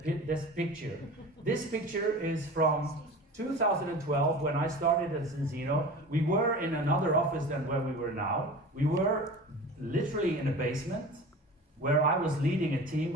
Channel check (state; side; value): normal; both; correlation 0.36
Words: this picture. This picture is from 2012, when I started at Zinzino. We were in another office than where we were now. We were literally in a basement, where I was leading a team